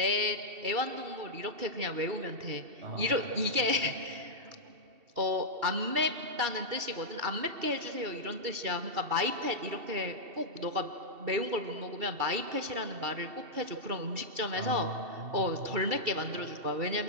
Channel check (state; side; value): late; left; 2.7 ms